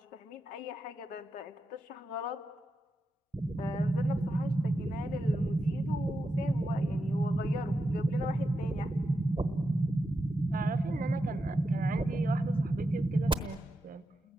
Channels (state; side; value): normal; both; correlation 0.88